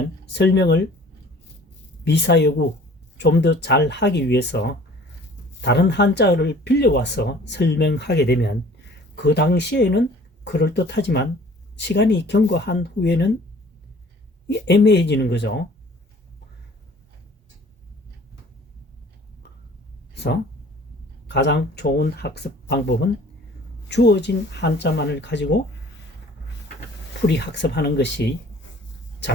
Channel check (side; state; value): both; normal; correlation 0.50